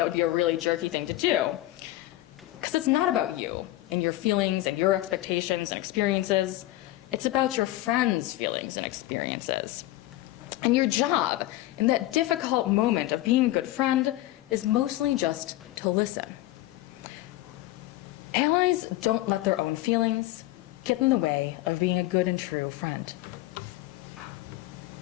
would be a really jerky thing to do, because it's not about you and your feelings and your expectations and experiences. It's about your friend's feelings and experiences. And your job in that difficult moment of being a good friend is mostly just to listen. Allies don't let their own feelings, get in the way of being a good and true friend.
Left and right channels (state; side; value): quieter; right; 16.7 dB